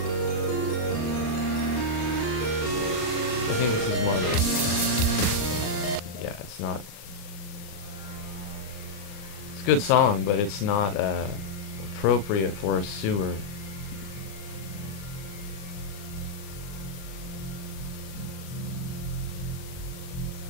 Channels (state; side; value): late; right; 39 ms